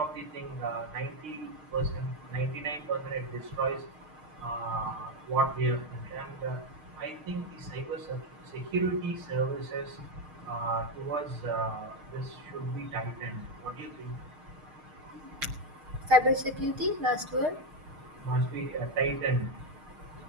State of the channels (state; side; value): late; left; 6.5 ms